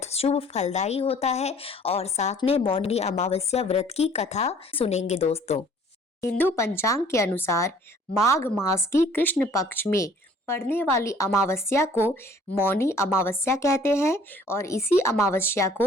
शुभ फलदायी होता है, और साथ में मौनी अमावस्या व्रत की कथा सुनेंगे दोस्तों। हिंदू पंचांग के अनुसार माघ मास की कृष्ण पक्ष में पड़ने वाली अमावस्या को मौनी अमावस्या कहते हैं और इसी अमावस्या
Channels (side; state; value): both; normal; correlation 0.55